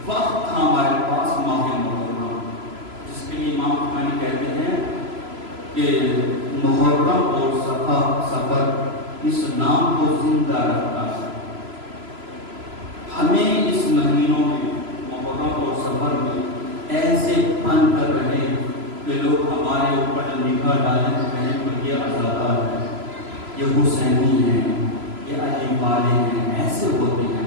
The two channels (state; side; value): late; left; 3.0 ms